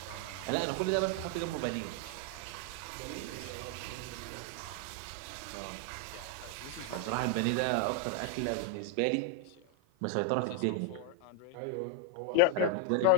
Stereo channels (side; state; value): both; different; correlation 0.00